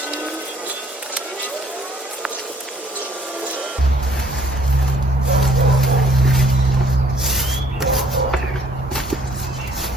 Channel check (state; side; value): normal; both; correlation 0.62